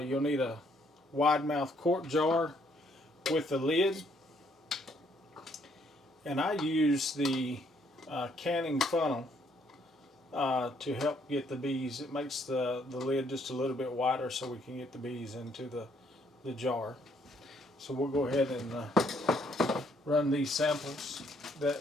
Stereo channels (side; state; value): both; normal; correlation 0.68